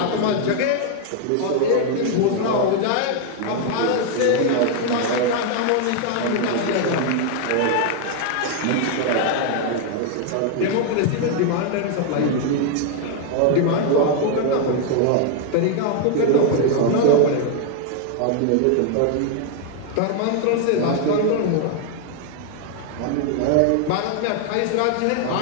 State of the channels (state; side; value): different; both; correlation 0.00